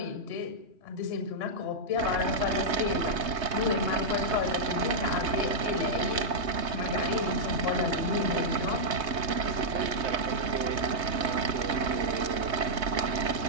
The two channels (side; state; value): left; late; 3.3 ms